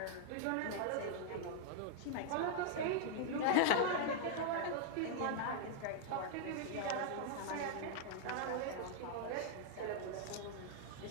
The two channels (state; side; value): different; both; correlation -0.01